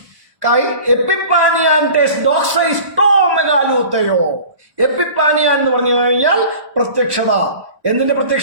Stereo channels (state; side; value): late; left; 1.1 ms